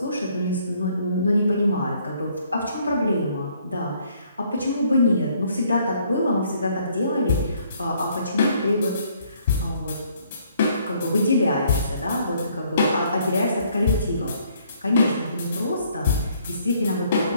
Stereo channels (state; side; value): inverted; both; correlation -0.65